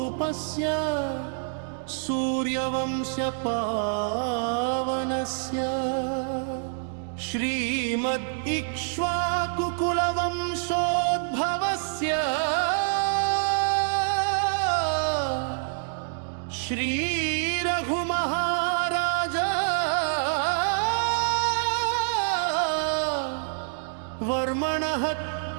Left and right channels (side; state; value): left; silent; digital silence